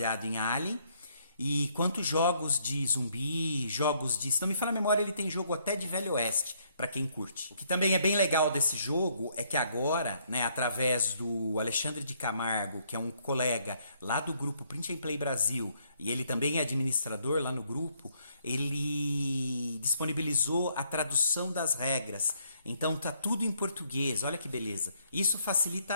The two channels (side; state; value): both; inverted; correlation -0.70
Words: em Alien, e quanto jogos de zumbi, jogos de... Se não me falha a memória, ele tem jogo até de Velho Oeste, para quem curte. O que também é bem legal desse jogo é que agora, né, através do Alexandre de Camargo, que é um colega lá do grupo Print and Play Brasil, e ele também é administrador lá no grupo, ele disponibilizou a tradução das regras. Então tá tudo em português, olha que beleza. Isso